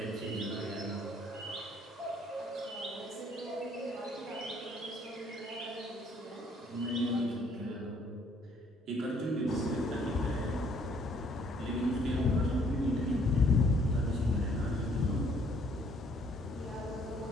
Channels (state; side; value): normal; both; correlation 0.63